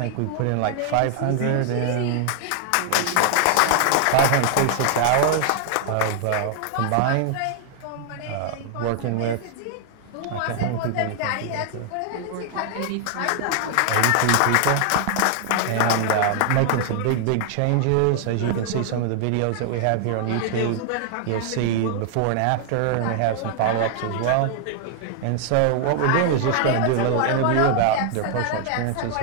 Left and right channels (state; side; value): different; both; correlation 0.00